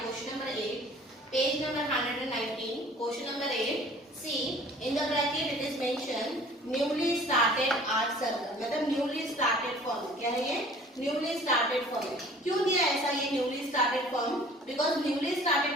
question number 8, page number 119. Question number 8. See, in the bracket it is mentioned newly started art circle. मतलब newly started form. क्या है ये? Newly started form. क्यों दिया ऐसा ये newly started form? Because newly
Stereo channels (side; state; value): both; normal; correlation 0.50